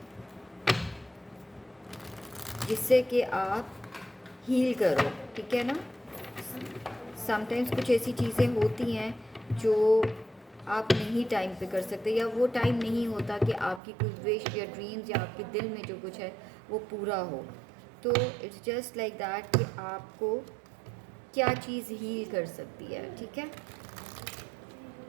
जिससे कि आप हील करो, ठीक है ना. समटाइम्स कुछ ऐसी चीज़ें होती हैं जो आप नहीं टाइम पे कर सकते, या वो टाइम नहीं होता कि आपकी कोई विश या ड्रीम्स या आपके दिल में जो कुछ है वो पूरा हो. तो इट्स जस्ट लाइक दैट कि आपको क्या चीज़ हील कर सकती है, ठीक है.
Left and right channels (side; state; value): left; drops out; at 13.8 s